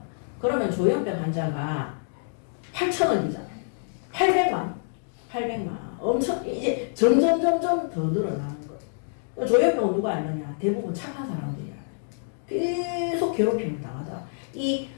그러면 조현병 환자가 8천억이잖아요. 800만. 엄청 이제 점점 더 늘어나는 거예요. 조현병은 누가 알느냐? 대부분 착한 사람들이야. 계속 괴롭힘을 당하다. 이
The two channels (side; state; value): right; silent; digital silence